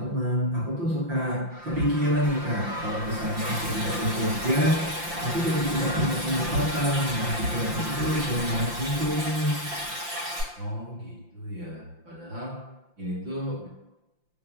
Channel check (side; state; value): left; late; 5.8 ms